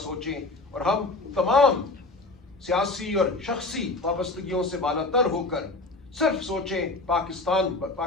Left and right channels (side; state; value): right; quieter; 3.2 dB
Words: اور ہم تمام سیاسی اور شخصی وابستگیوں سے بالاتر ہو کر صرف سوچیں